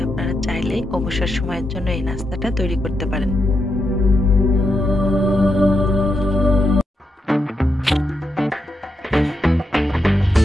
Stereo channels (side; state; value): both; normal; correlation 0.84